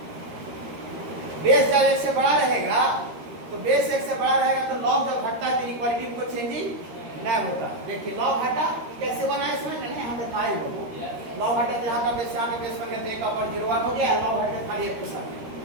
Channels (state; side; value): late; left; 13 ms